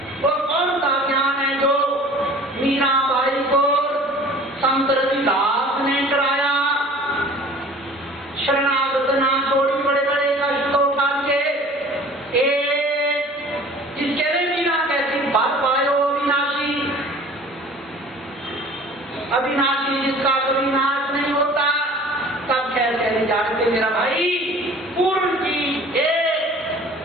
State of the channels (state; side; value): normal; both; correlation 0.46